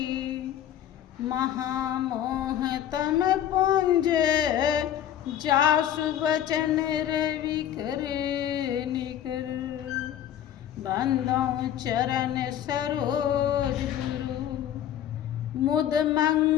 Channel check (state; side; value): quieter; right; 10.8 dB